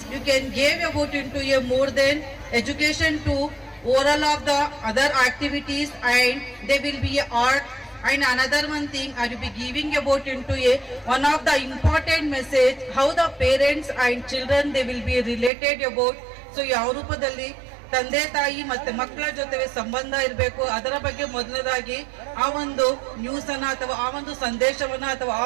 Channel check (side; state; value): left; drops out; at 15.5 s